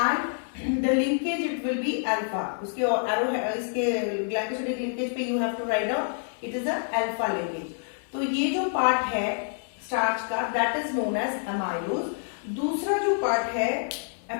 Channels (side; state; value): right; silent; digital silence